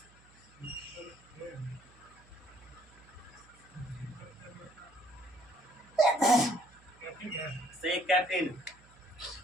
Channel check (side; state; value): right; noise; hum, 26 dB below the sound